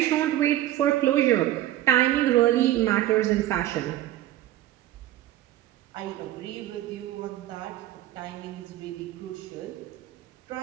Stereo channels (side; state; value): left; quieter; 14.0 dB